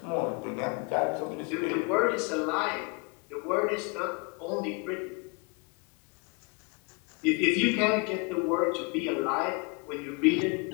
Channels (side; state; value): right; quieter; 31.9 dB